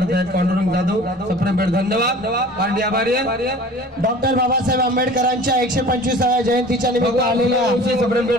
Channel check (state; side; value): normal; both; correlation 0.43